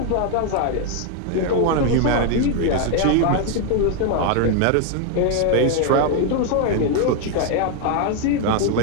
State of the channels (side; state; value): both; different; correlation 0.00